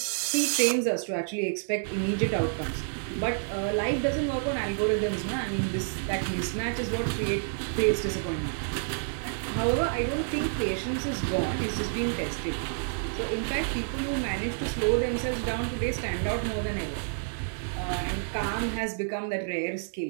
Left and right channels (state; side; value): silent; left; digital silence